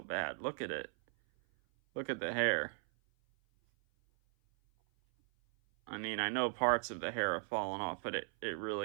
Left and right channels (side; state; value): left; silent; 53 dB below the other